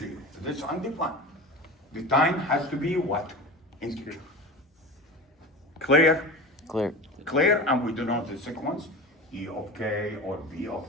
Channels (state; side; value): normal; both; correlation 0.30